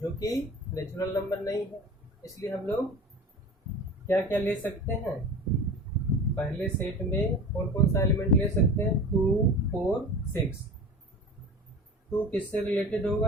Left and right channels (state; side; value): normal; both; correlation 0.35